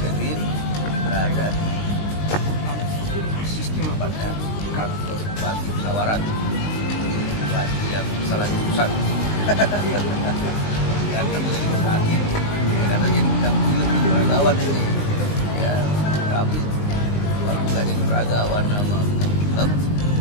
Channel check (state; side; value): late; right; 19 ms